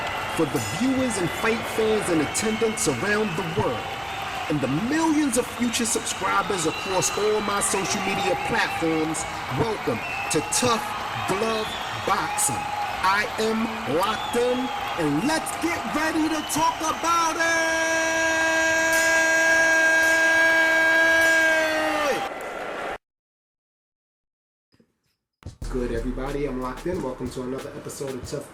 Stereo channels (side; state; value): both; identical; correlation 1.00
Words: for the viewers and fight fans in attendance around the world, and the millions of future subscribers across all my social media platforms, welcome to Tough Glove Boxing. I am locked in, and let's get ready to talk about it! Good, everybody, I'm locked in. Welcome to another episode of Tough